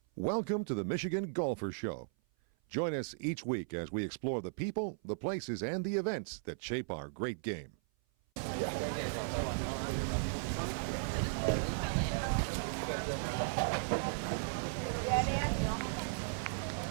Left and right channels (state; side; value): silent; left; 53 dB below the other